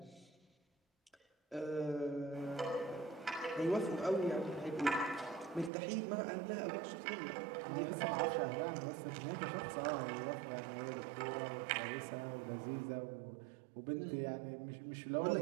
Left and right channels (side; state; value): left; drops out; at 5.7 s